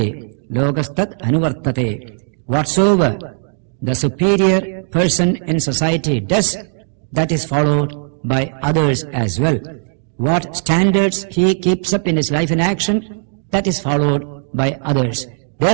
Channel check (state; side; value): silent; left; 68 dB below the other